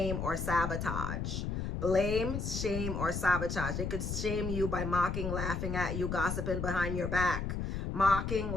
or sabotage. Blame, shame, or sabotage. They could shame you by mocking, laughing at you, gossiping behind your back. Mocking,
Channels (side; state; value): left; noise; rumble, 3 dB below the sound